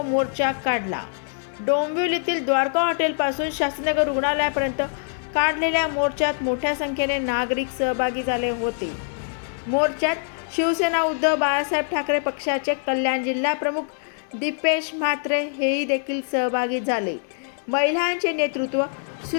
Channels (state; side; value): silent; right; digital silence